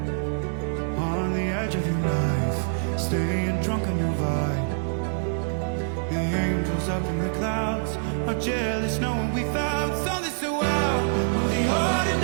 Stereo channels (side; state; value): left; silent; digital silence